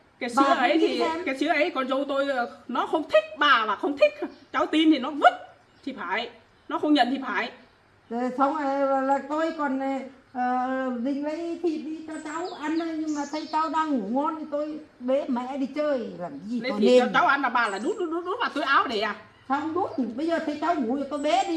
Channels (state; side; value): identical; both; correlation 1.00